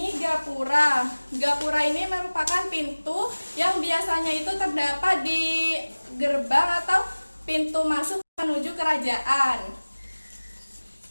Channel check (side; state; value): both; inverted; correlation -1.00